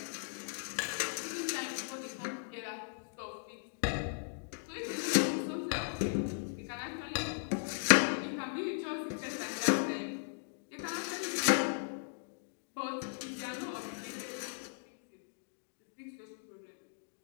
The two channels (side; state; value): right; silent; digital silence